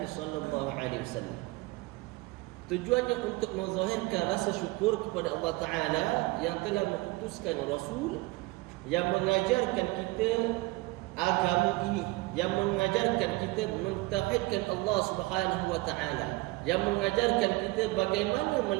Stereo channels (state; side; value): quieter; left; 22.2 dB